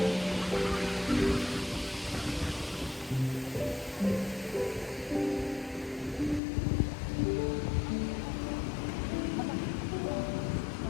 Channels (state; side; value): drops out; right; at 6.4 s